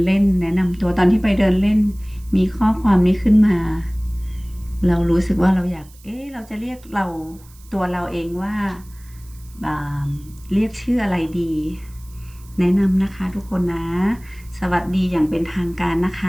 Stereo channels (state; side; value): noise; right; hiss, 26 dB below the sound